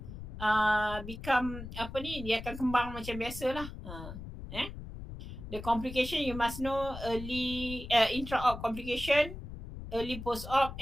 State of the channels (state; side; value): noise; left; rumble, 10 dB below the sound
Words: become dia akan kembang macam biasalah. The complication you must know: early intra-op complication, early post-op,